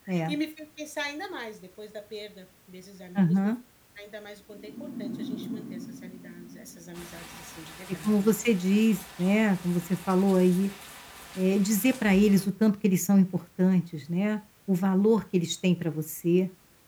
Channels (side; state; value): both; identical; correlation 1.00